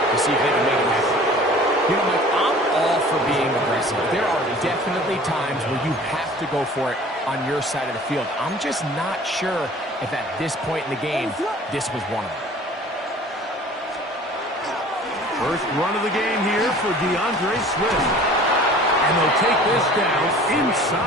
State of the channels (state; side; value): normal; both; correlation 0.47